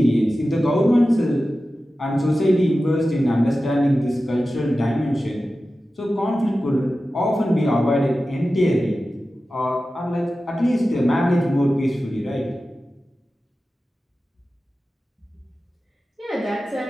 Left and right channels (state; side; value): normal; both; correlation 0.94